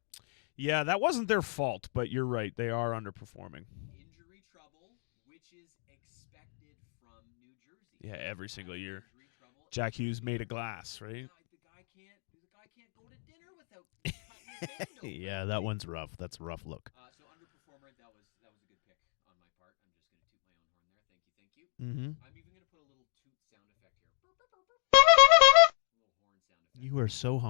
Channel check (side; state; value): right; silent; digital silence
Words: Yeah, that wasn't their fault, but you're right. They are underperforming. Injury trouble, which is expected from New Jersey. Yeah, they have injury trouble every year. Made of glass, right? Yeah, the guy can't go to dinner without cutting his hand open. That one's rough. That's a rough look. So underperformer, that was a good pick on my part. I'm just going to toot my own horn there. Thank you. Mm-hmm. I'm even going to put a little toot sound effect here. Burp, burp, burp, burp. A little horn sound effect. You are so